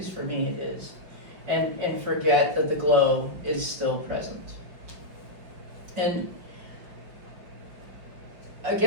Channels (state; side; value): late; left; 5.4 ms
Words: for me it is, and forget that the glow is still present. And I